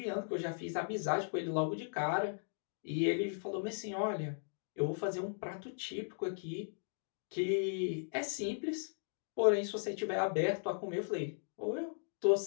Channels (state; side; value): silent; right; digital silence